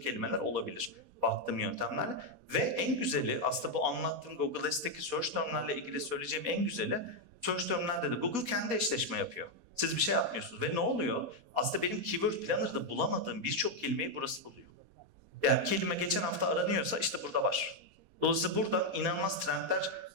olabilir baktığım yöntemlerle. Ve en güzeli aslında bu anlattığım Google Ads'teki search termlerle ilgili söyleyeceğim en güzeli search termlerde de Google kendi eşleşme yapıyor. Siz bir şey yapmıyorsunuz. Ve ne oluyor? Aslında benim Keyword Planner'da bulamadığım birçok kelimeyi burası buluyor. Yani kelime geçen hafta aranıyorsa işte burada var. Dolayısıyla buradan inanılmaz trendler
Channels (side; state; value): left; late; 4.2 ms